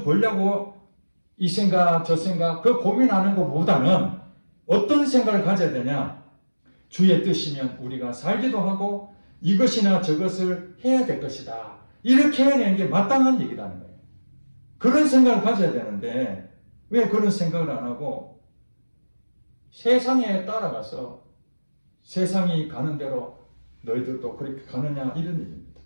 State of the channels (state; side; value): inverted; both; correlation -1.00